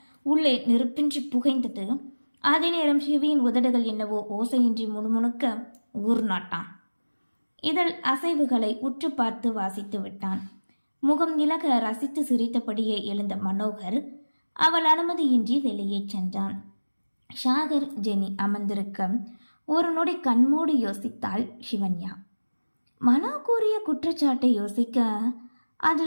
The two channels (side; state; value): both; inverted; correlation -1.00